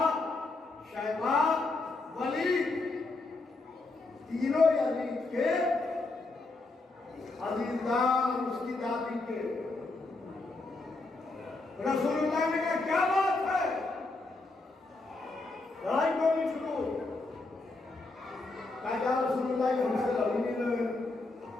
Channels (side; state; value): right; quieter; 3.3 dB